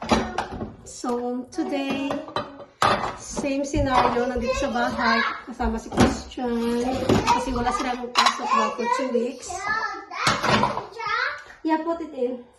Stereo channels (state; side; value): identical; both; correlation 1.00